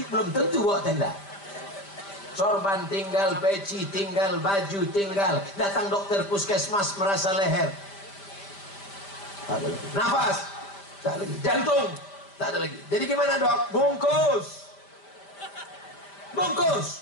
belum tentu buat tenda. Sorban tinggal, peci tinggal, baju tinggal. Datang dokter puskesmas merasa leher. Tak ada lagi. Nafas, tak ada lagi. Jantung, tak ada lagi. Jadi gimana dok? Bungkus. bungkus,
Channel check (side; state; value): right; late; 5.1 ms